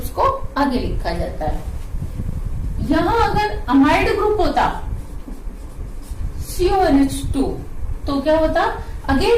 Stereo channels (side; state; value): both; identical; correlation 1.00